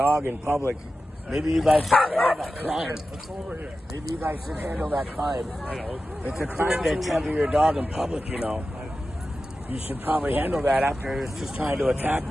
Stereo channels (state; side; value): normal; both; correlation 0.93